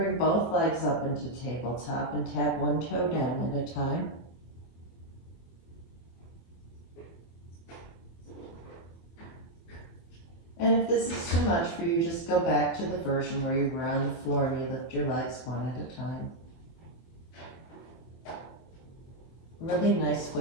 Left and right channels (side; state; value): right; late; 24 ms